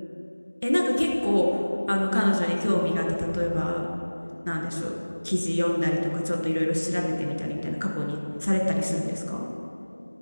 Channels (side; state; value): both; inverted; correlation -1.00